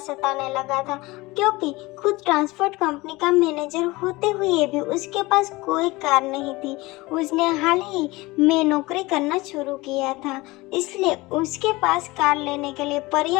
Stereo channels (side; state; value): right; quieter; 21.6 dB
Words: लगा था, क्योंकि खुद ट्रांसपोर्ट कंपनी का मैनेजर होते हुए भी उसके पास कोई कार नहीं थी। उसने हाल ही में नौकरी करना शुरू किया था, इसलिए उसके पास कार लेने के लिए